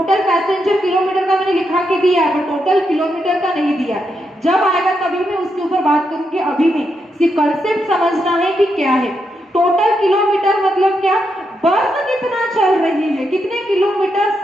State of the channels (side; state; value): both; normal; correlation 0.82